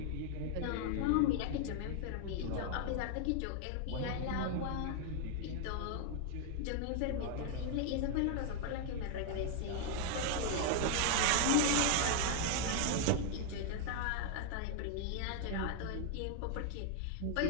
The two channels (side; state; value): both; different; correlation 0.00